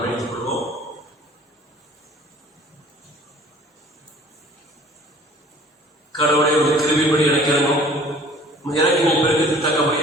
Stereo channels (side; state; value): both; normal; correlation 0.50